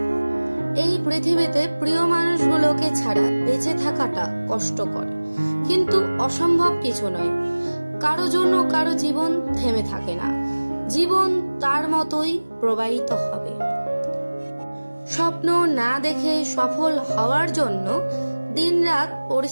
এই পৃথিবীতে প্রিয় মানুষগুলোকে ছাড়া বেঁচে থাকাটা কষ্টকর, কিন্তু অসম্ভব কিছু নয়। কারো জন্য কারো জীবন থেমে থাকে না, জীবন তার মতোই প্রবাহিত হবে। স্বপ্ন না দেখে সফল হওয়ার জন্য দিনরাত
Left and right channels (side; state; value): both; inverted; correlation -1.00